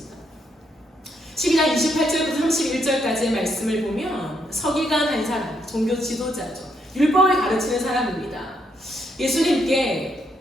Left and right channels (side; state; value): both; normal; correlation 0.76